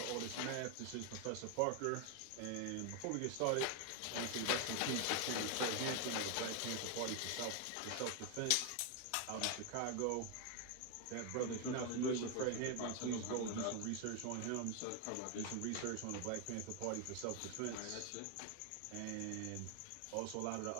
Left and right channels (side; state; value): both; different; correlation 0.01